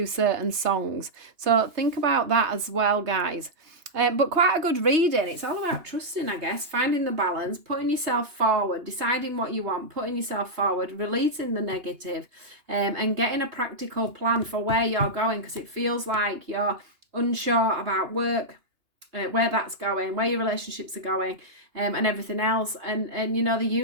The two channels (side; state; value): left; late; 2.9 ms